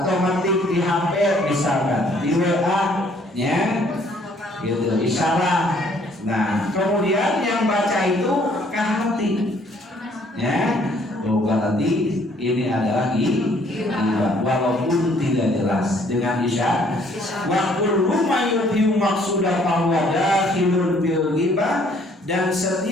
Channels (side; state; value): both; normal; correlation 0.62